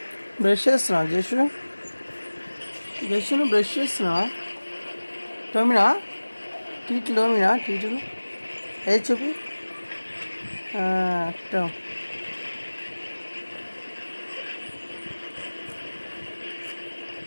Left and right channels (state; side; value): inverted; both; correlation -1.00